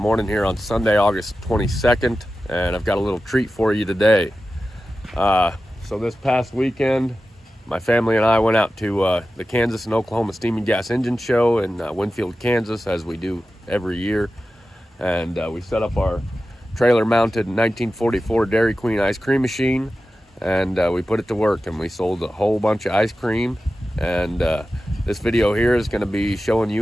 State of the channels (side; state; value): both; normal; correlation 0.94